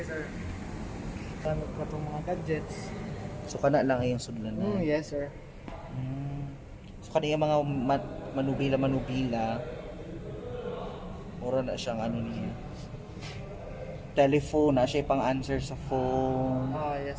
sir. Gamit pa itong mga gadgets. So kana lang ay yung sudlan na. Yes sir. So kana yung mga manubila. Mura na siyang ano niya. Telephone na siya pang answer sa phone.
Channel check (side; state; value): both; identical; correlation 1.00